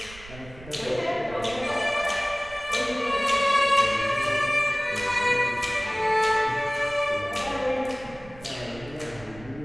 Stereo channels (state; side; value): noise; right; rumble, 19 dB below the sound